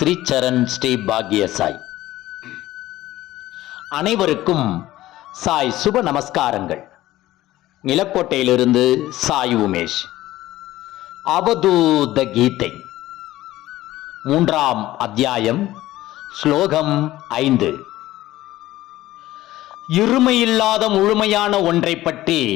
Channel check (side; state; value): right; quieter; 15.8 dB